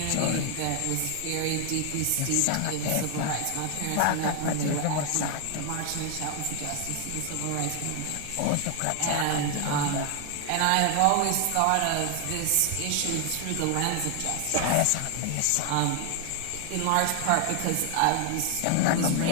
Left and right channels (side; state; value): both; different; correlation 0.00